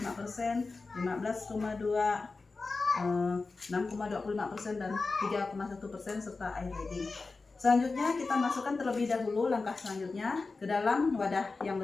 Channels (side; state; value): right; quieter; 3.9 dB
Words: 15,2%, 6,25% dan 3,1% serta air leading. Selanjutnya kita masukkan terlebih dahulu langkah selanjutnya ke dalam wadah yang